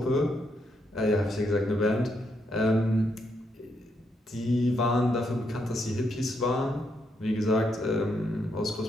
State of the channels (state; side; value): normal; both; correlation 0.78